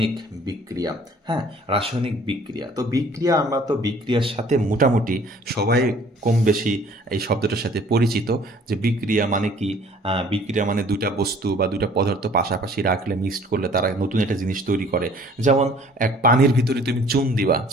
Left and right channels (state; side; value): normal; both; correlation 0.54